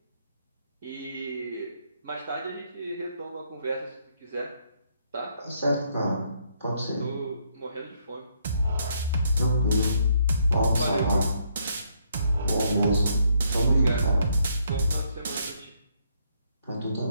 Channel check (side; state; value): both; inverted; correlation -0.72